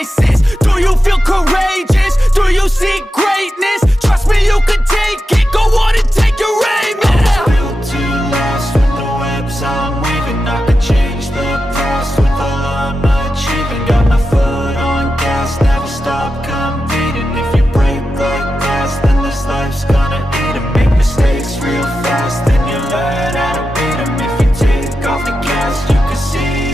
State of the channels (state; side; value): normal; both; correlation 0.90